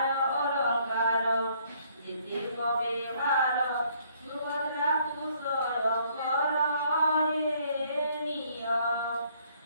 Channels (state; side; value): inverted; both; correlation -0.64